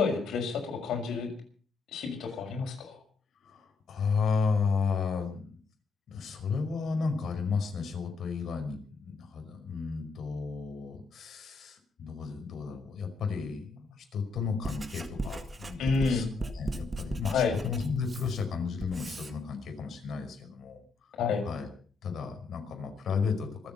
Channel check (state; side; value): quieter; right; 4.5 dB